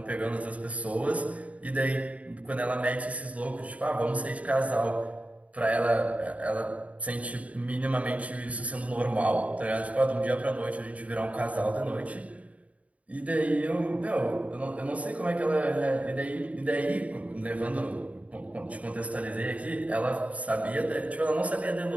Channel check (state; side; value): late; left; 0.067 ms